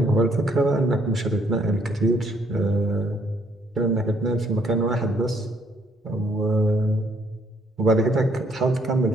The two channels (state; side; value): normal; both; correlation 0.68